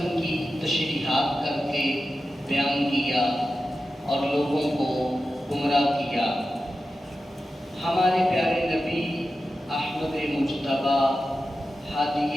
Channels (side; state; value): both; normal; correlation 0.92